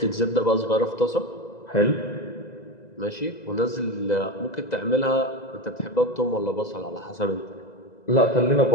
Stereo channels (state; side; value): late; right; 2.0 ms